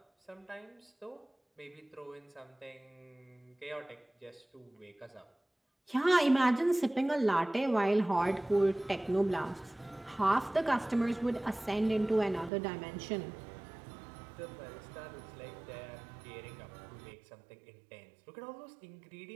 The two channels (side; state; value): left; drops out; at 12.5 s